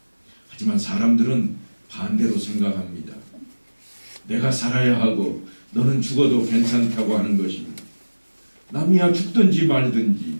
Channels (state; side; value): inverted; both; correlation -1.00